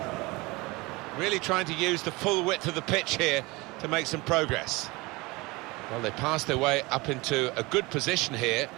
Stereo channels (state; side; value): quieter; left; 23.5 dB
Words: Really trying to use the full width of the pitch here to make some progress. Well, they passed their way up into a good position here